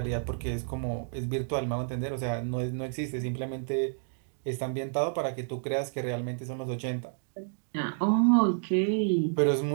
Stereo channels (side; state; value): left; silent; digital silence